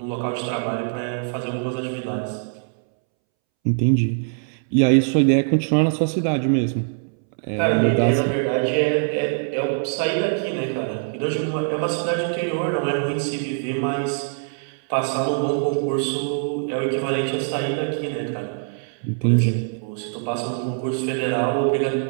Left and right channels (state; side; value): silent; left; 63 dB below the other